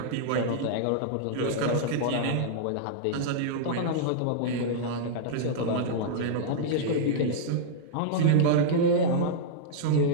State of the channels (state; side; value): different; both; correlation -0.02